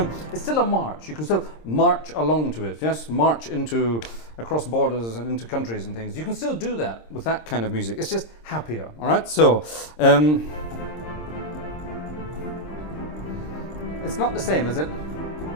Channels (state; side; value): late; right; 26 ms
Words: still a march. You can still march along to it, yes? March across borders and into countries and things. You can still do that with that kind of music. It's just happier, all right? So, it's not the same, is it?